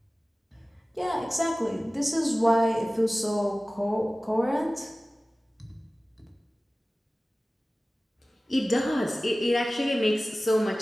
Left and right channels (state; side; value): normal; both; correlation 0.97